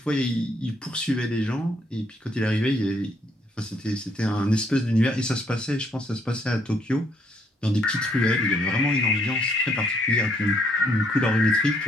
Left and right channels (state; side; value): normal; both; correlation 0.70